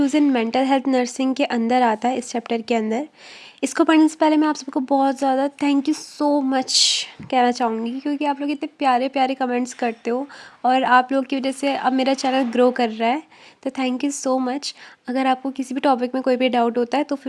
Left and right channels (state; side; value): identical; both; correlation 1.00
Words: in mental health nursing के अंदर आता है, इस चैप्टर के अंदर। इसको पढ़ने से पहले मैं आप सबको बहुत ज़्यादा थैंक यू सो मच कहना चाहूँगी, क्योंकि आप लोग इतने प्यारे प्यारे कमेंट्स करते हो और आप लोग की वजह से अब मेरा चैनल ग्रो कर रहा है। तो थैंक यू सो मच। अगर आपको किसी भी टॉपिक में कोई भी डाउट होता है तो